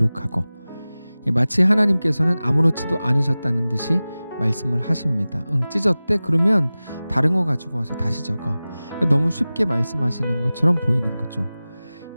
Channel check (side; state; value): both; inverted; correlation -0.97